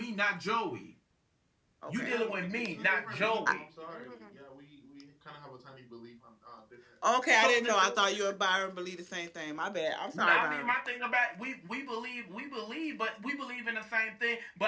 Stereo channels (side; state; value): both; identical; correlation 1.00